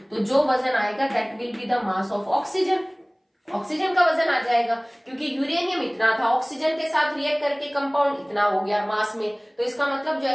तो जो वजन आएगा that will be the mass of oxygen. Oxygen का वजन आ जाएगा, क्योंकि यूरेनियम इतना था, ऑक्सीजन के साथ रिएक्ट करके कंपाउंड इतना हो गया मास में, तो इसका मतलब जो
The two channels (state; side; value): identical; both; correlation 1.00